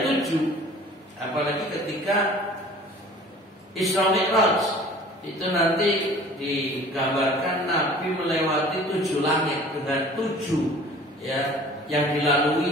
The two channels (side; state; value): both; normal; correlation 0.47